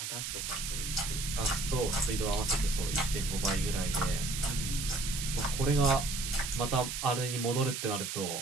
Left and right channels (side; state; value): right; noise; hiss, 4 dB below the sound